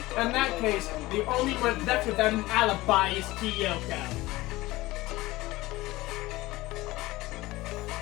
In that case, the only one left without an alibi is Kyoko.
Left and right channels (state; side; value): quieter; right; 19.1 dB